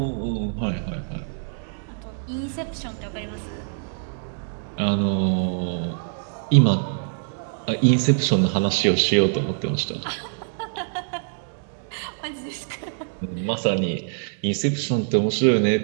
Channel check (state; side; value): silent; left; 62 dB below the other